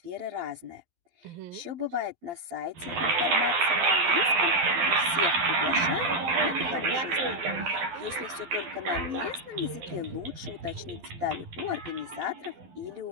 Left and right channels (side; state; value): left; late; 12 ms